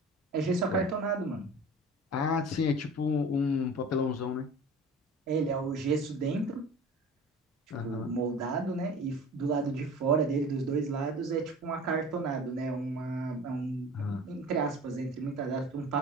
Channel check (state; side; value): normal; both; correlation 0.39